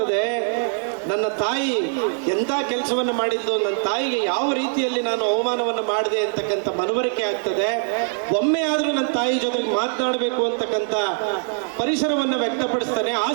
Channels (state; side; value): silent; left; 60 dB below the other